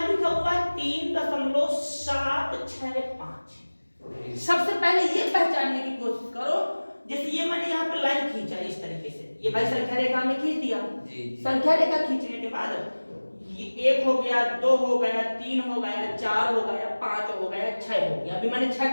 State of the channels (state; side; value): inverted; both; correlation -1.00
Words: लिखा हुआ है 3.765। सबसे पहले ये पहचानने की कोशिश करो, जैसे ये मैंने यहाँ पे लाइन खींचा इस तरीके से, ये भाई संख्या रेखा में खींच दिया। संख्या रेखा खींचने के बाद ये 1 हो गया, 2 हो गया, 3 हो गया, 4 हो गया, 5 हो गया, 6 हो गया। अभी मैंने 6